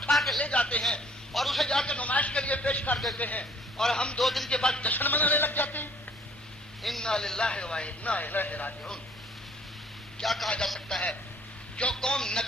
کے لے جاتے ہیں اور اسے جا کے نمائش کے لیے پیش کر دیتے ہیں اور ہم 2 دن کے بعد جشن منانے لگ جاتے ہیں. انا للہ و انا الیہ راجعون. کیا کہا جا سکتا ہے؟ جو قوم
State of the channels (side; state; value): both; normal; correlation 0.58